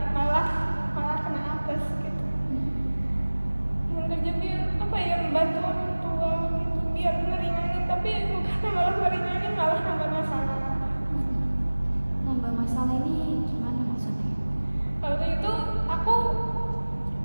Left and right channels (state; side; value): inverted; both; correlation -1.00